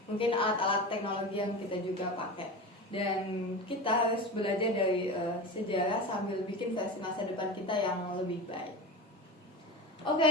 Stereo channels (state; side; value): normal; both; correlation 0.27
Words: mungkin alat-alat teknologi yang kita juga pakai. Dan kita harus belajar dari sejarah sambil bikin versi masa depan kita yang lebih baik. Oke,